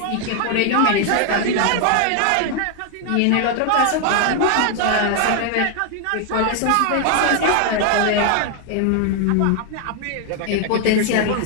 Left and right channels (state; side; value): different; both; correlation 0.00